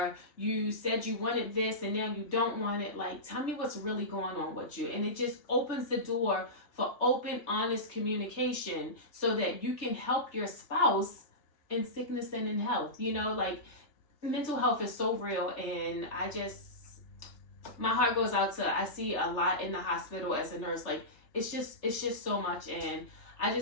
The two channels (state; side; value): late; right; 3.3 ms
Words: you said you wanted this and now you don't want it. Like, tell me what's really going on with you. And it just opens the door for open, honest communication, so that you can help your spouse in sickness and in health. Like mental health is so real, and my heart goes out to, I see a lot in the hospital as a nurse. Like it's just so much, and I